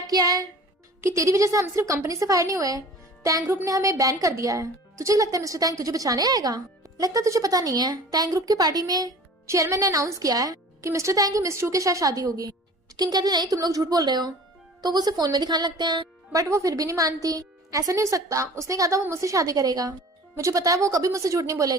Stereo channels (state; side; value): normal; both; correlation 0.43